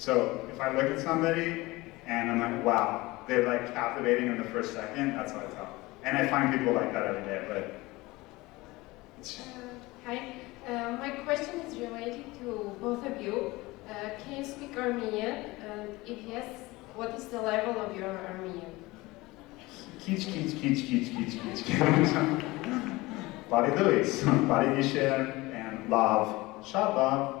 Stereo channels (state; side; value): quieter; right; 21.1 dB